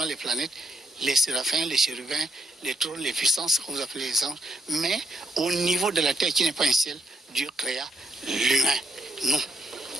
les planètes, les séraphins, les chérubins, les trônes, les puissances, que vous appelez les anges, mais au niveau de la terre qui n'est pas un ciel, Dieu créa l'humain, nous.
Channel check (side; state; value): both; normal; correlation 0.74